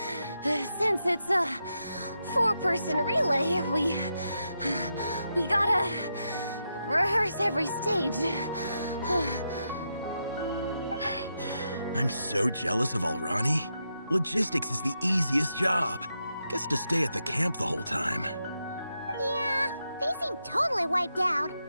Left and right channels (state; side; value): inverted; both; correlation -0.85